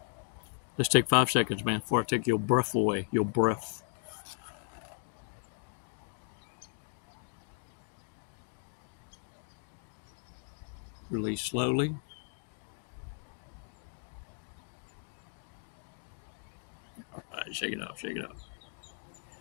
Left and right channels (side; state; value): right; silent; 54 dB below the other